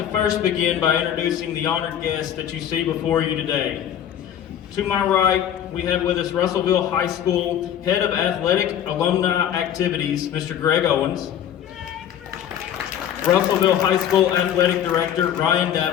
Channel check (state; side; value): quieter; right; 10.0 dB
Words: first begin by introducing the honored guests that you see before you today. To my right, we have with us Russellville High School Head of Athletic Alumni Activities, Mr. Greg Owens. Russellville High School Athletic Director, Ryan